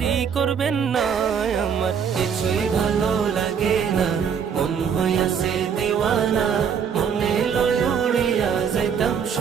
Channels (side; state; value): left; quieter; 7.2 dB